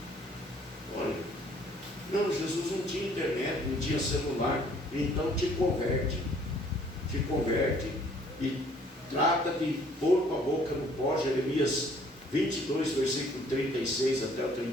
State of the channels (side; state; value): both; normal; correlation 0.59